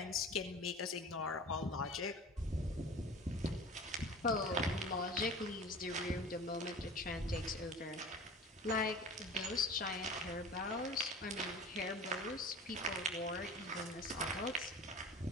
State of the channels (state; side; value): normal; both; correlation 0.38